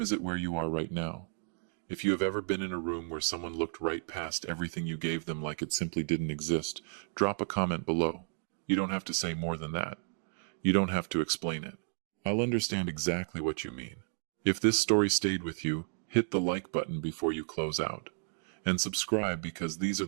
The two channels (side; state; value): left; silent; 56 dB below the other